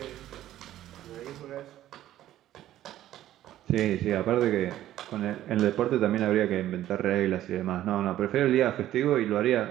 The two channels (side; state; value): left; quieter; 13.2 dB